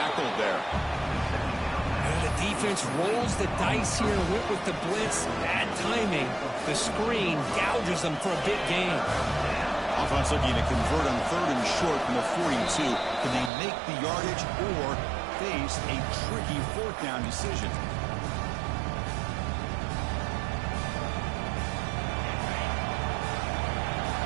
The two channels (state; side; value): drops out; left; at 13.5 s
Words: there. And the defense rolls the dice here, went with the blitz. Bad timing. The screen gouges them for a big gain. Offense looking to convert on third and short from the 42. Can they make the yardage or face a tricky fourth down decision?